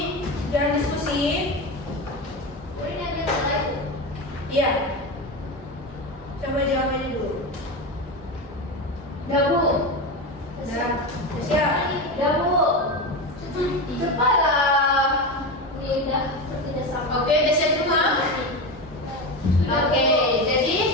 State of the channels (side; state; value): both; normal; correlation 0.19